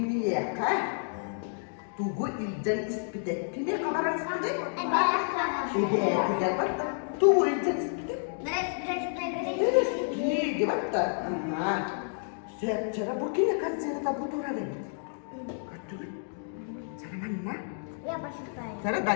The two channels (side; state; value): right; silent; digital silence